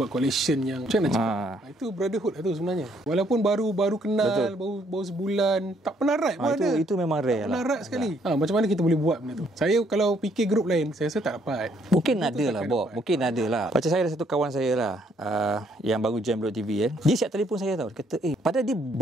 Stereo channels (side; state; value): both; normal; correlation 0.68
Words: collection yang macam mana cakap? Itu brotherhood lah tu sebenarnya. Walaupun baru kenal, baru sebulan, tak pernah ride pun ada. Itu memang rare lah. Tak pernah ride sekali. Macam mana kita boleh buat benda tu? Saya kalau fikir grup lain, saya rasa tak dapat. Mungkin ada lah, Bob. Mungkin ada lah. Macam saya ada satu kawan saya lah, yang baru join Blok TV kan. Dia siap telefon saya tau. Dia kata, padahal dia